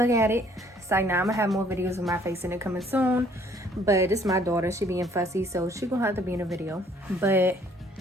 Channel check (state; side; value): normal; both; correlation 0.60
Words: at it. So now I'm gonna have more videos of my face in it coming soon, but it's my daughter. She being fussy, so she gonna have to be in a video. But